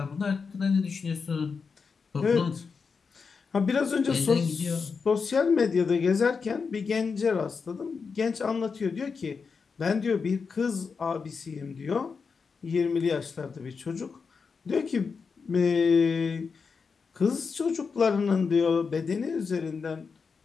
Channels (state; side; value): quieter; right; 5.3 dB